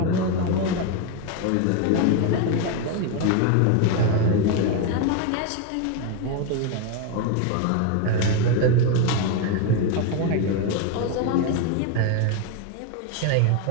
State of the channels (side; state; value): both; different; correlation 0.02